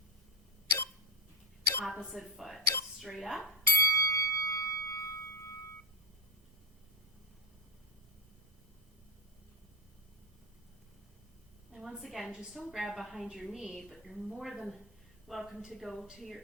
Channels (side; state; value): both; normal; correlation 0.13